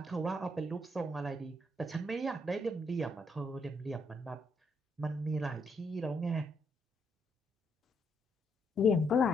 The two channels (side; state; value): both; normal; correlation 0.75